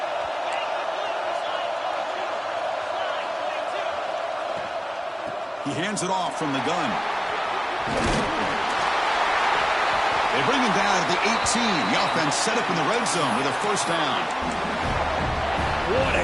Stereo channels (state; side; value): identical; both; correlation 1.00